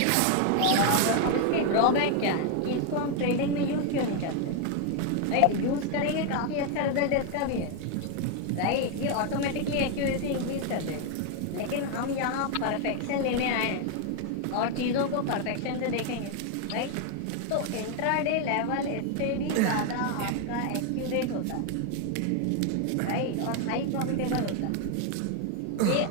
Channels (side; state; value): both; different; correlation 0.01